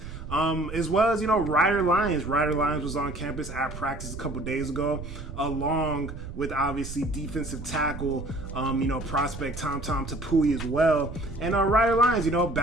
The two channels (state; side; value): noise; right; rumble, 10 dB below the sound